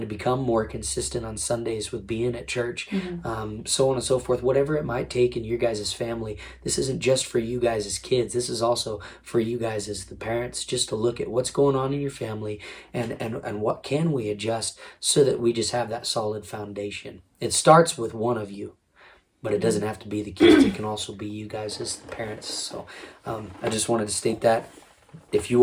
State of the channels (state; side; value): identical; both; correlation 1.00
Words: to become more consistent on Sundays with being at church, so on and so forth. Whatever it might take in your guys' family, this isn't just for you guys as kids. This is also for you guys as the parents, just to look at what's going on in your family and what can we adjust so that we just have that solid foundation. It starts with one of you, but it doesn't have to be the kids. It can also be you guys as the parents. So I just wanted to state that. If